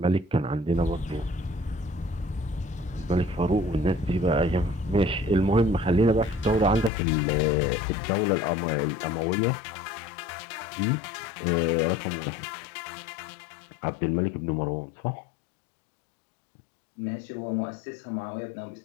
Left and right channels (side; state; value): right; drops out; at 6.9 s